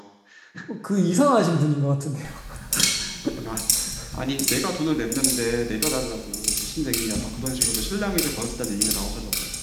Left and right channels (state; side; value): identical; both; correlation 1.00